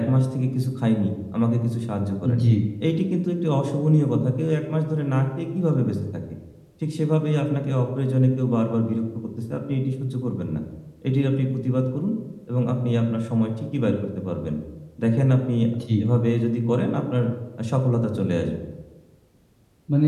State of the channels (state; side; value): identical; both; correlation 1.00